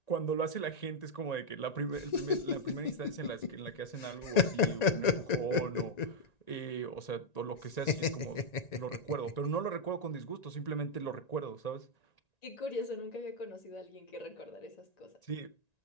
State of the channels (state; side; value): late; right; 1.9 ms